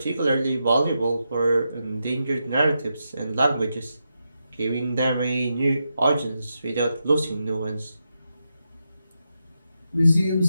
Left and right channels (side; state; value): both; inverted; correlation -0.86